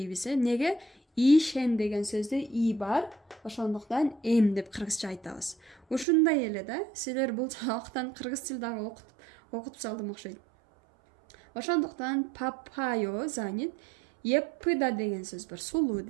Неге? Ишен деген сөздө и бар. Ошондуктан деп кыргызча айтабыз. Ушундай эле да. Силер бул жактан кыргыз тил дагы окутуп салдым окшойт. Ошондуктан папайо занят. Еппыда деген сөз бар. Сулуу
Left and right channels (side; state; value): left; drops out; at 6.1 s